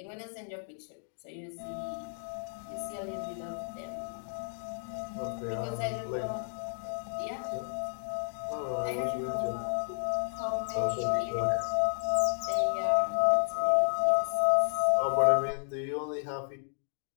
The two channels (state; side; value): silent; right; 56 dB below the other